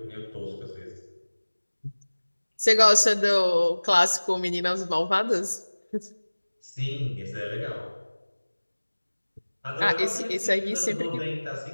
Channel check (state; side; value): inverted; both; correlation -1.00